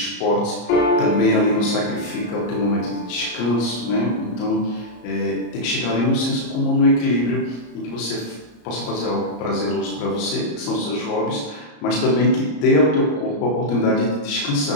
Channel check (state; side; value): late; right; 34 ms